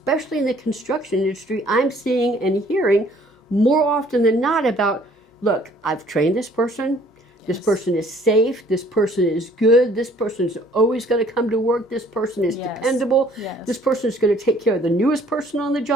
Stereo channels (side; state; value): both; normal; correlation 0.58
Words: in the construction industry, I'm seeing and hearing more often than not about, look, I've trained this person, This person is safe. This person is good. This person is always going to come to work. This person is dependable. This person is going to take care of the newest person on the